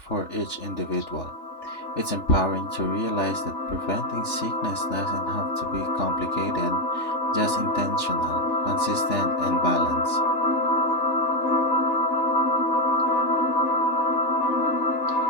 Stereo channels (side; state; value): right; late; 3.4 ms